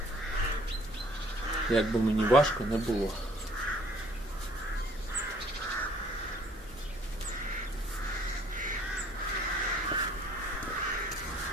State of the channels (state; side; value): normal; both; correlation 0.58